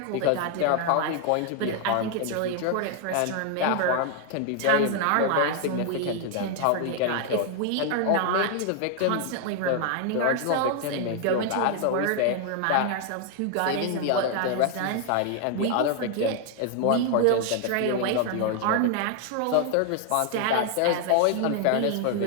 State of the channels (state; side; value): different; both; correlation 0.00